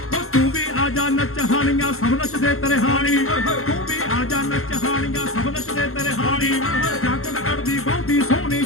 ਨੱਚ ਹਾਣੀਆਂ ਸਭ ਨੱਚਦੇ ਤੇਰੇ ਹਾਣੀ ਤੂੰ ਵੀ ਆ ਜਾ ਨੱਚ ਹਾਣੀਆਂ ਸਭ ਨੱਚਦੇ ਤੇਰੇ ਹਾਣੀ ਜਾਕਟ ਕੱਢਦੀ ਬਹੁਤੀ ਸੋਹਣੀ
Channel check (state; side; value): late; right; 0.62 ms